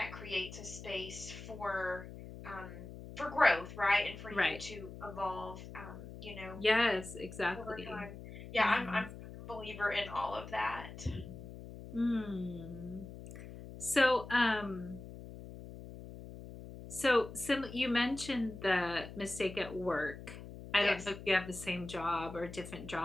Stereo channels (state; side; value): noise; left; hum, 13 dB below the sound